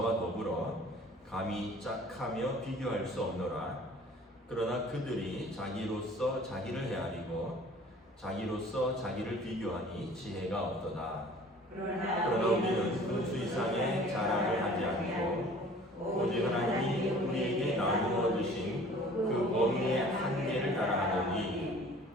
더불어 감히 짝하며 비교할 수 없노라. 그러나 그들이 자기로서 자기를 헤아리고 자기로서 자기를 비교하니 지혜가 없도다. 그러나 우리는 분수 이상의 자랑을 하지 않고 오직 하나님이 우리에게 나누어 주신 그 범위의 한계를 따라하노니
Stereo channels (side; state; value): both; normal; correlation 0.49